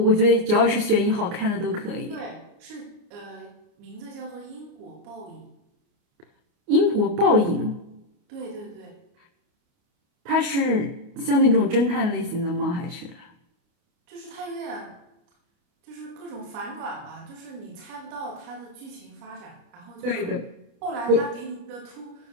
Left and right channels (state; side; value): late; left; 29 ms